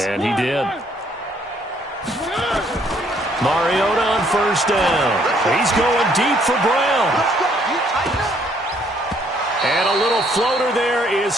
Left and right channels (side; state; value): both; normal; correlation 0.66